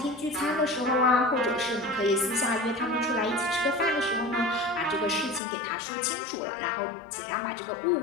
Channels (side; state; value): right; drops out; at 5.4 s